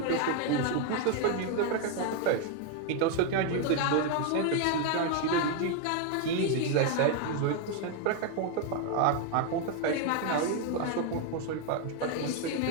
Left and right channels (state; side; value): different; both; correlation 0.01